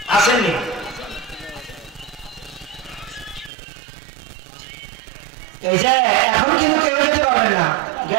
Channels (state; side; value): drops out; left; at 3.5 s